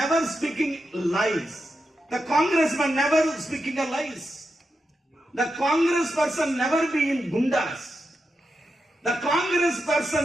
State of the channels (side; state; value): both; normal; correlation 0.87